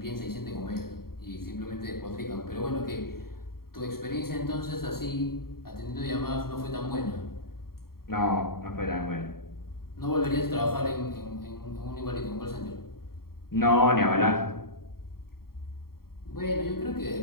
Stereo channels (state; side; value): late; right; 0.93 ms